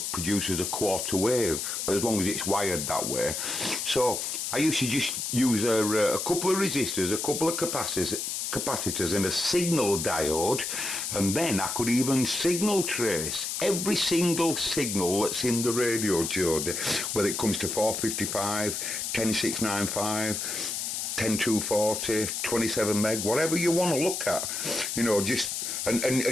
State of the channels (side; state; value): left; noise; hiss, 3 dB below the sound